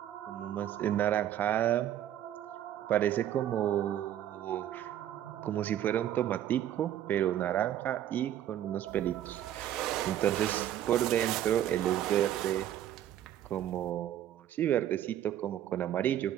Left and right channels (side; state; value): left; quieter; 11.5 dB